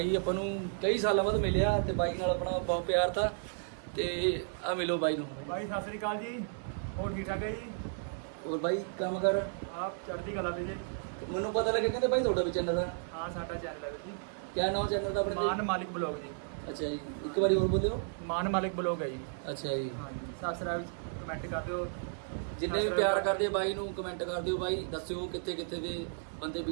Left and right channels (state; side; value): silent; left; digital silence